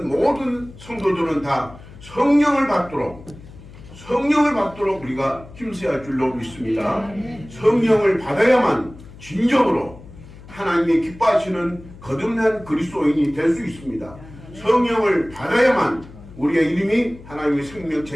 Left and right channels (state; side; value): noise; left; hum, 19 dB below the sound